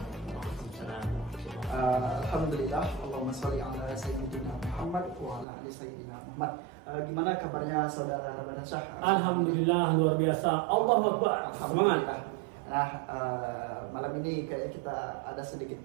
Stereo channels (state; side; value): drops out; left; at 5.5 s